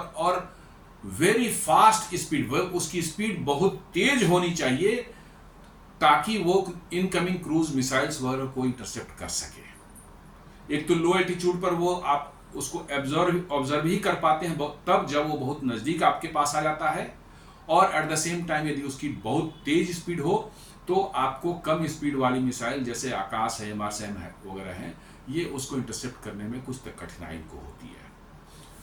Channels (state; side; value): identical; both; correlation 1.00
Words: वेरी फास्ट स्पीड, उसकी स्पीड बहुत तेज होनी चाहिए ताकि वो इनकमिंग क्रूज मिसाइल्स वगैरह को इंटरसेप्ट कर सके। एक तो लो एल्टीट्यूड पर वो आप उसको ऑब्जर्व ही कर पाते हैं तब जब वो बहुत नज़दीक आपके पास आ जाता है, और एट द सेम टाइम यदि उसकी बहुत तेज स्पीड हो तो आपको कम स्पीड वाली मिसाइल जैसे आकाश है, एमआरसैम है वगैरह हैं, ये उसको इंटरसेप्ट करने में कुछ तक कठिनाई को होती है।